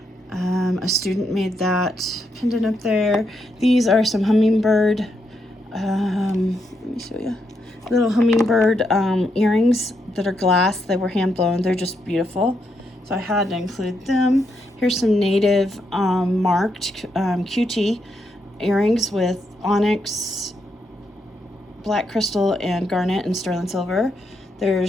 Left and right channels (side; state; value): both; normal; correlation 0.80